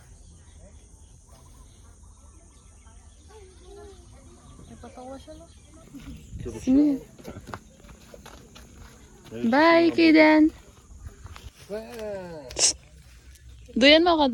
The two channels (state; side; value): identical; both; correlation 1.00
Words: Napatawa siya lang. Bye, Kiden. Duyan mo ka,